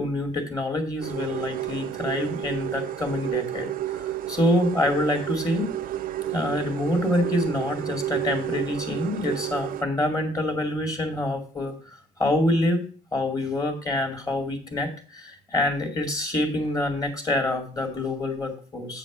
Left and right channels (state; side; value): normal; both; correlation 0.60